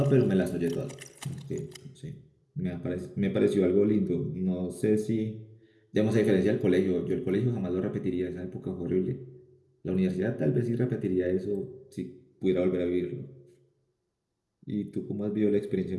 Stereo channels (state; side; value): identical; both; correlation 1.00